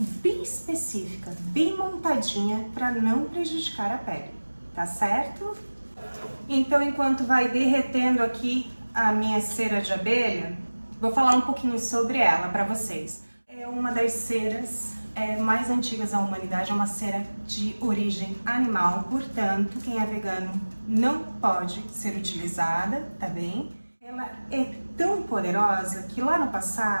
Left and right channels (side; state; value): both; inverted; correlation -1.00